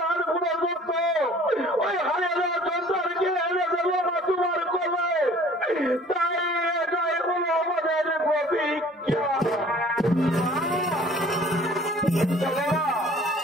পুনর্মুক্ত ওই হারিয়ে দেওয়া সন্তানকে এনে দেবো মা তোমার কোলে। তাই এটাই হলো আমাদের প্রতিজ্ঞা।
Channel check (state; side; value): normal; both; correlation 0.51